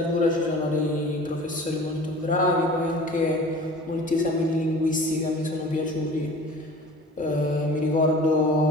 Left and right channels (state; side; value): normal; both; correlation 0.42